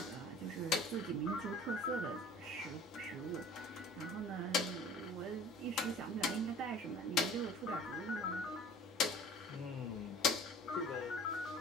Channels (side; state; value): both; normal; correlation 0.46